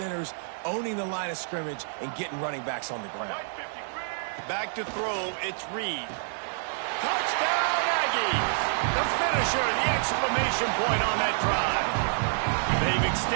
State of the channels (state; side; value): silent; left; digital silence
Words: owning the line of scrimmage, and getting running backs on the ground. Back to throw, it's Reed. Touchdown, Aggies! The finisher, the exclamation point on that drive. They've